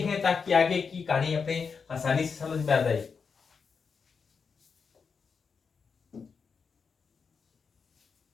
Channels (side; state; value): right; quieter; 5.6 dB